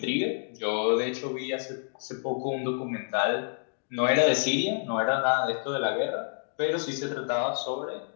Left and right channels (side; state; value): right; silent; digital silence